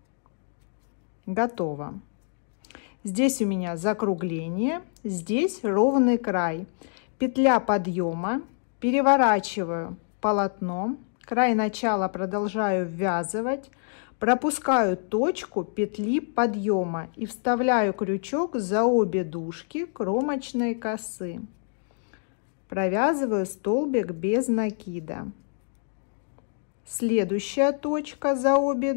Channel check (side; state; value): right; silent; digital silence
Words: Готово. Здесь у меня закругление, здесь ровный край. Петля подъема, переворачиваю полотно, край начала продолжаю ввязывать, пропускаю точку петли подъема и вставляю крючок за обе дужки кромочной косы. Провязываю столбик без накида. Следующая точка за обе